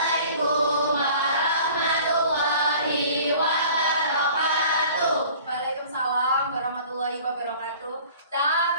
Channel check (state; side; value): inverted; both; correlation -0.47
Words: warahmatullahi wabarakatuh. Waalaikumsalam warahmatullahi wabarakatuh.